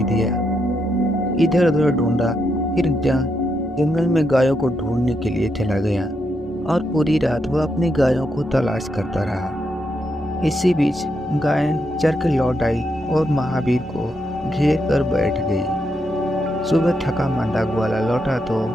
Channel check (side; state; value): both; normal; correlation 0.81